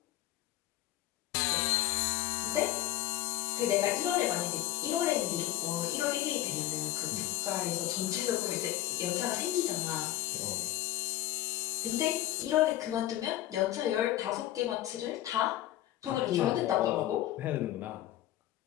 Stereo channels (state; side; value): quieter; right; 14.5 dB